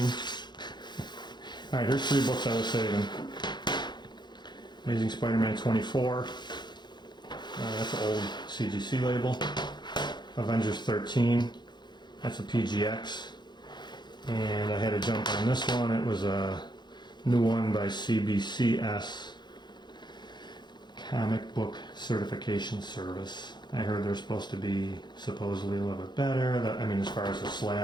Alright, here's 3 books I was saving. Amazing Spider-Man 24. That's an old CGC label. Avengers 13. That's a PGX. And I had to jump on this one. It was a new one by CBCS, Comic Book Certification Service. I heard they're supposed to be supposedly a little bit better. I mean, as far as the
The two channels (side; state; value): right; late; 0.21 ms